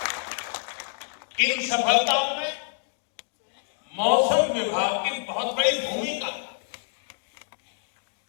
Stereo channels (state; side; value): silent; right; digital silence